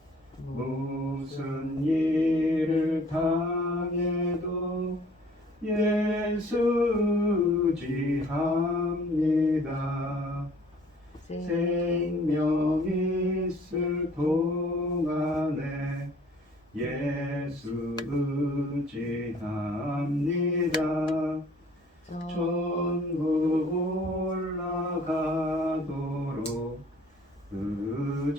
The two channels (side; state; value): both; normal; correlation 0.55